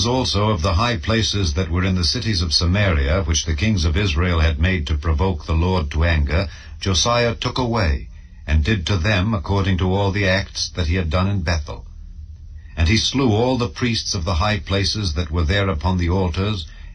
also of the high places that were in the cities of Samaria, which the kings of Israel had made to provoke the Lord to anger, Josiah took away, and did to them according to all the acts that he had done in Bethel. And he slew all the priests of the high places that were there upon the altars,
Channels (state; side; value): identical; both; correlation 1.00